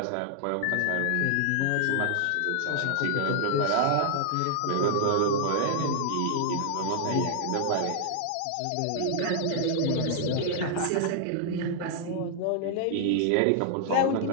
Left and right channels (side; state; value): both; different; correlation 0.00